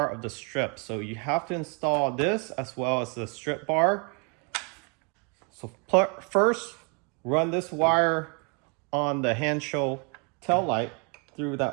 of the strip. So you have to install this as well as the strip bar. So first, run this wire on the Hansshow tail light through that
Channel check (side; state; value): left; quieter; 35.5 dB